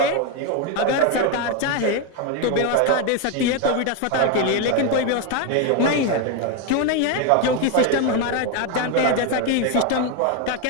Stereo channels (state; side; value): different; both; correlation 0.02